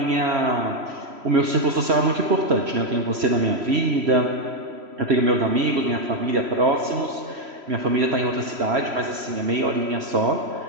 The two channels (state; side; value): late; left; 3.0 ms